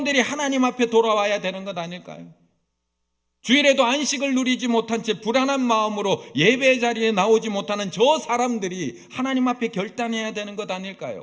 하나님 앞에 돌아와야 되는 것 아닐까요? 주일에도 안식을 누리지 못한 채 불안한 마음으로 예배 자리에 나오지 못하는 저 사람들이 하나님 앞에 결단해야 되는 것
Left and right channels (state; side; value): identical; both; correlation 1.00